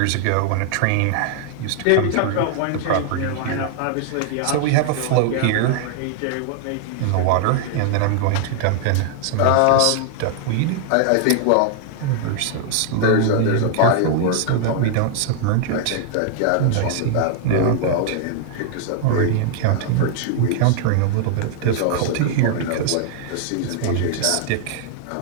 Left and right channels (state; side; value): different; both; correlation 0.00